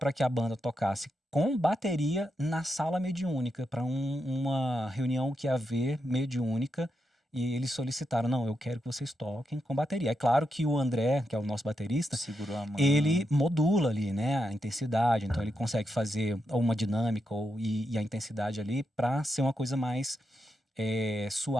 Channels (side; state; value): both; normal; correlation 0.85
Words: que a banda tocasse com bateria na sala mediúnica, para uma reunião que ia haver mediúnica, e eles solicitaram, não, eu quero que vocês toquem com bateria. É claro que o André, que é o nosso baterista, Segurou a mão. ele modula ali, né, a intensidade, então ele consegue fazer uma dinâmica e a intensidade ali para ser uma coisa mais